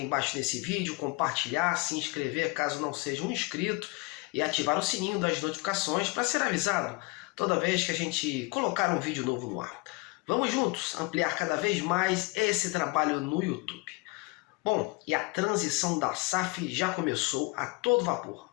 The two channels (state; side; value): quieter; right; 26.8 dB